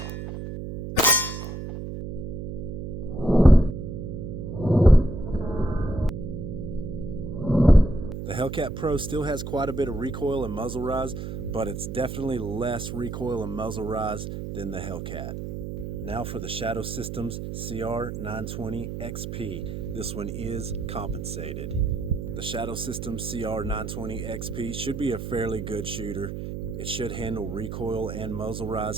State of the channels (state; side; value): noise; right; hum, 6 dB below the sound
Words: The Hellcat Pro still has quite a bit of recoil and muzzle rise, but it's definitely less recoil and muzzle rise than the Hellcat. Now for the Shadow Systems CR920 XP. This one is compensated. The Shadow Systems CR920 XP should be a fairly good shooter. It should handle recoil and muzzle